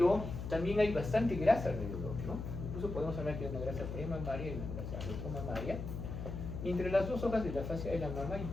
también hay bastante grasa alrededor, ¿no? Incluso podemos hablar que hay una grasa premamaria y una grasa retromamaria. Y entre las dos hojas de la fascia de la mama hay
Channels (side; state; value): left; noise; hum, 6 dB below the sound